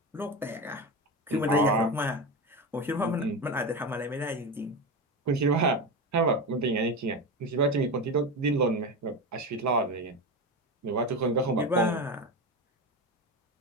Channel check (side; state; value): both; normal; correlation 0.20